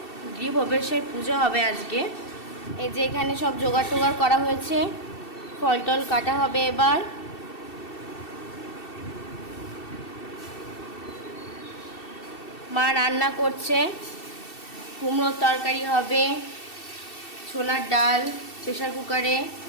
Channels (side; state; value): right; late; 2.7 ms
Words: গৃহপ্রবেশের পুজো হবে আজকে। এই যে এখানে সব জোগাড় টোগাড় করা হয়েছে, ফল টল কাটা হবে এবার। মা রান্না করছে, কুমড়োর তরকারি হবে, ছোলার ডাল প্রেসার কুকারে।